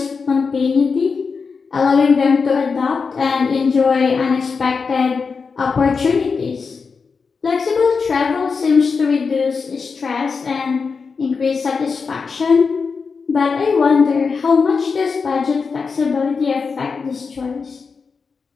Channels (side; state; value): right; quieter; 5.1 dB